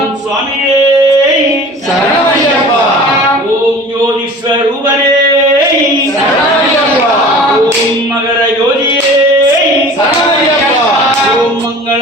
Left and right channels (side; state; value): both; normal; correlation 0.42